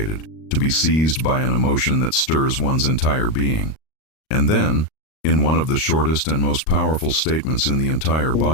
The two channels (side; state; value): right; late; 38 ms